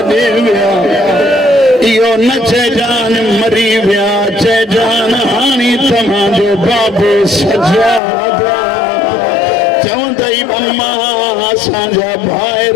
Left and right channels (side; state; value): right; drops out; at 8.0 s